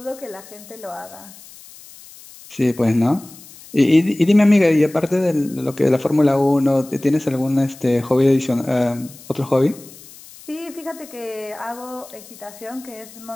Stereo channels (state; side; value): noise; left; hiss, 20 dB below the sound